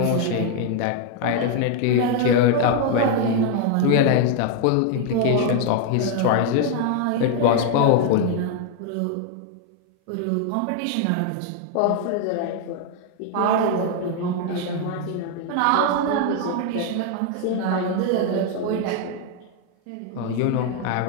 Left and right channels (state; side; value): different; both; correlation 0.00